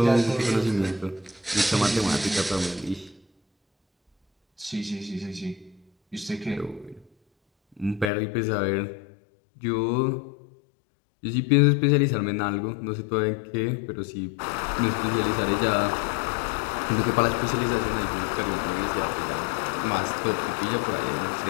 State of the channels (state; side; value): drops out; right; at 8.1 s